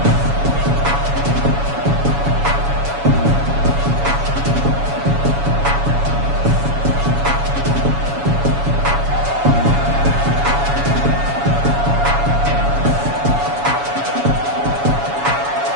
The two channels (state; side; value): late; left; 7.1 ms